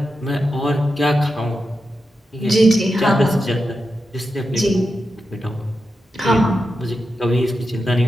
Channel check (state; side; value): normal; both; correlation 0.89